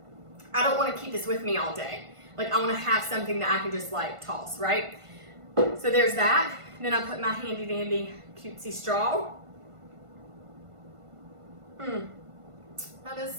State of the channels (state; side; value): late; left; 1.5 ms